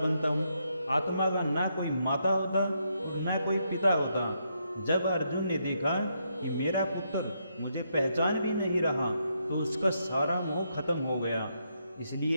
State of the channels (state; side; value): inverted; both; correlation -0.78